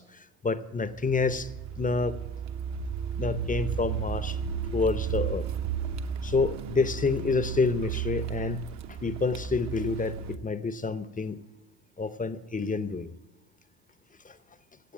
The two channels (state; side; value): normal; both; correlation 0.45